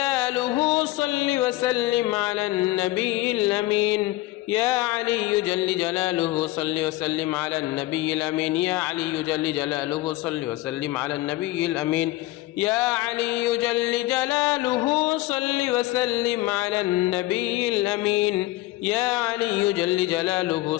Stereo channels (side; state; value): right; quieter; 17.9 dB